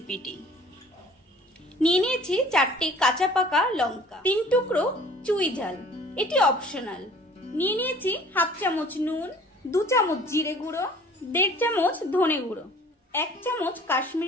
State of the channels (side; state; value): both; normal; correlation 0.50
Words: নিয়ে নিয়েছি 4টে কাঁচা পাকা লঙ্কা, 3 টুকরো চুই ঝাল, এটি অপশনাল। নিয়ে নিয়েছি 1/2 চামচ নুন, 2 চামচ জিরে গুঁড়ো, 1.5 চামচ ধনে গুঁড়ো, 1 চামচ